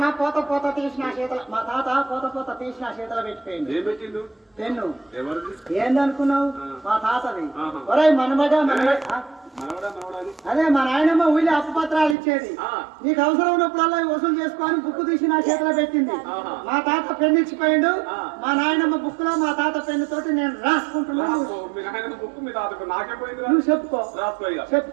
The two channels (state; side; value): drops out; left; at 12.2 s